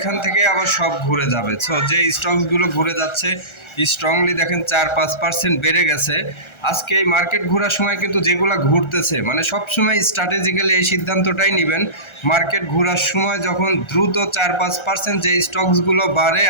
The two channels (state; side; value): late; right; 1.3 ms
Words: থেকে আবার সব ঘুরে যাবে। সো যে স্টকসগুলো ঘুরে যাচ্ছে স্ট্রংলি দেখেন 4-5% বেড়ে গেছে। আজকে এই মার্কেট ঘোরার সময় কিন্তু যেগুলো ঘুরতেছে, মানে সবসময় স্ট্র্যাটেজিক্যালি এই সিদ্ধান্তটাই নেবেন, মার্কেট ঘোরার সময় যখন দ্রুত 4-5% যে স্টকসগুলো বাড়ে,